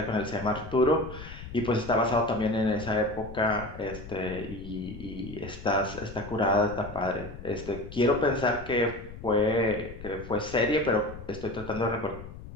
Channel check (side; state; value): left; noise; rumble, 13 dB below the sound